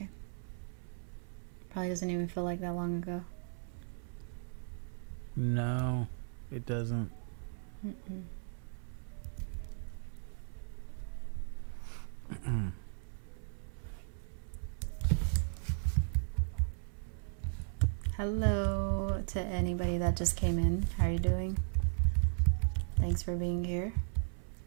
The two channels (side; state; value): left; silent; 53 dB below the other